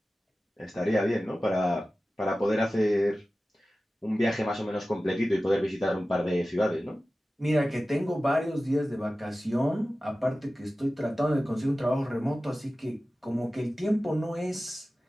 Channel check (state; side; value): normal; both; correlation 0.95